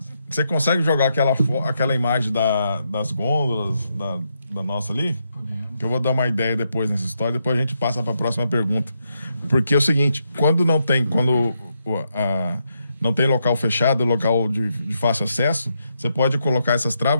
Você consegue jogar aquela imagem das gôndolas da nossa ali? Que eu vou dar uma ideia depois nessa história, depois a gente passa para a próxima pergunta. Porque é o seguinte, quando não tem local fechado, local de fácil acesso, você pode colocar essas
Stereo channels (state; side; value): inverted; both; correlation -0.81